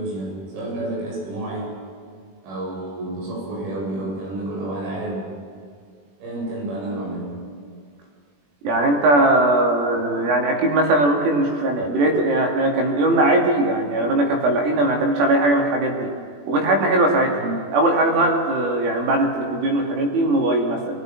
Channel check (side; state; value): left; late; 21 ms